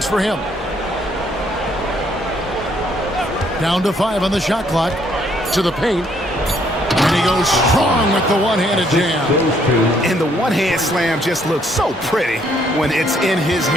for him. Down to 5 on the shot clock. To the paint. And he goes strong with the one-handed jam. And the one-hand slam just looks so pretty when it's in his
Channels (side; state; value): both; normal; correlation 0.68